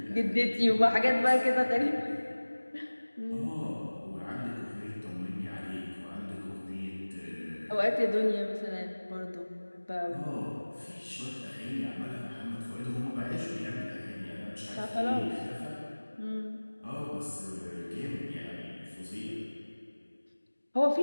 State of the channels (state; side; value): inverted; both; correlation -1.00